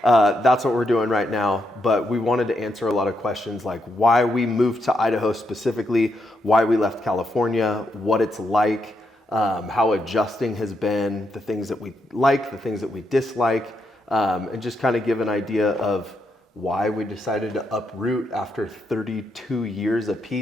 That's what we're doing right now. But we wanted to answer a lot of questions like why we moved to Idaho specifically, why we left California, what it's like, how adjusting has been, the things that we like, the things that we dislike, and just kind of give an idea of why we decided to uproot after 32 years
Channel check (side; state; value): both; normal; correlation 0.81